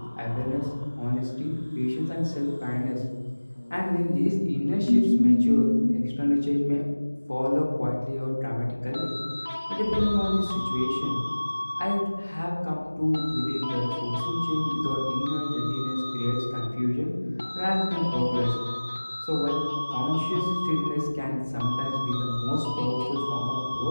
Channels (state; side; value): inverted; both; correlation -1.00